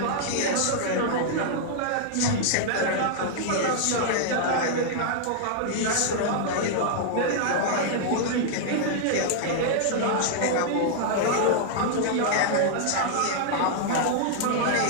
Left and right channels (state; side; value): different; both; correlation -0.01